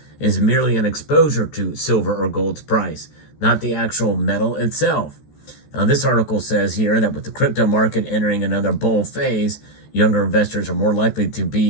is merely an exposure to silver or gold's price, not the actual metal itself. Now, this article says here that with the crypto market entering another bull phase, younger investors are more likely to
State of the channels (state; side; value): late; right; 14 ms